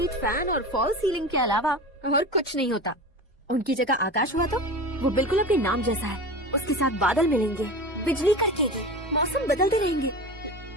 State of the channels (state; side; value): normal; both; correlation 0.30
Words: फैन और फॉल सीलिंग के अलावा और कुछ नहीं होता। उनकी जगह आकाश हुआ तो वो बिल्कुल अपने नाम जैसा है। उसके साथ बादल मिलेंगे, बिजली कड़केगी, मौसम बदलते रहेंगे।